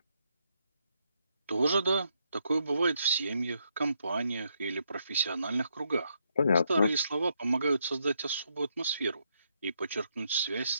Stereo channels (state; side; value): inverted; both; correlation -0.77